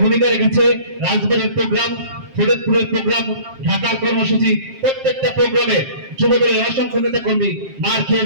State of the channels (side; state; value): left; late; 7.5 ms